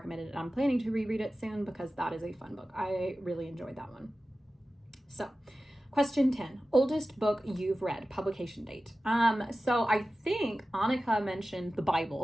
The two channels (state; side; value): normal; both; correlation 0.95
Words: and I'm planning to reread it soon because that is a fun book. I really enjoyed that one. So question 10, oldest book you've read, publication date. So I think Annika mentioned the